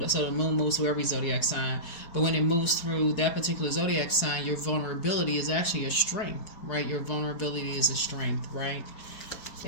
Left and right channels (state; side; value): late; right; 4.7 ms